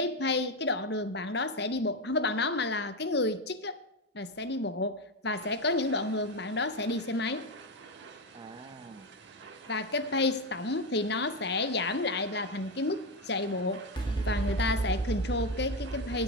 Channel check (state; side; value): normal; both; correlation 0.11